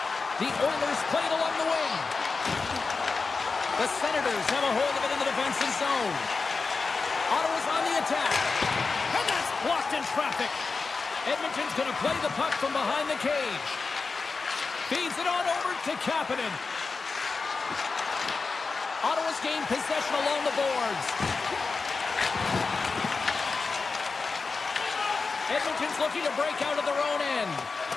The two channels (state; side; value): quieter; right; 4.3 dB